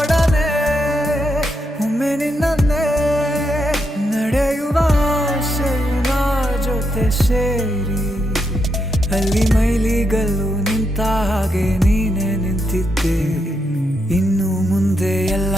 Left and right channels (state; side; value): normal; both; correlation 0.81